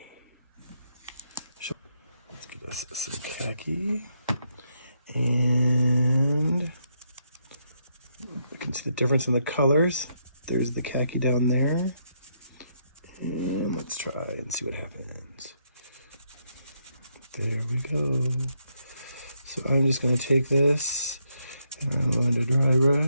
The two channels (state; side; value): inverted; both; correlation -0.77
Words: Let's get us some khaki. And you can see the difference in the colors. There's the khaki down there. And let's try and see what happens. There we go. So I'm just going to take this and I'm going to dry